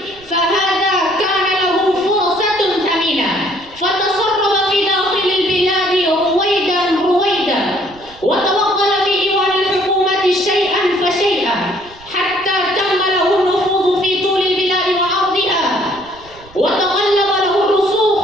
فهذا كان له فرصة ثمينة، فتصرف في داخل البلاد رويدا رويدا، وتوغل في إيوان الحكومة شيئا فشيئا، حتى تم له النفوذ في طول البلاد وعرضها، وتغلب له الرسوخ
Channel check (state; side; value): noise; right; rumble, 24 dB below the sound